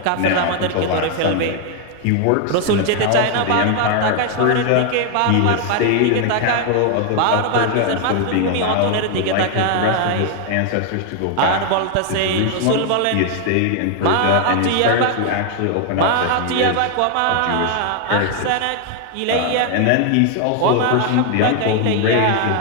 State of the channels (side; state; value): both; different; correlation 0.00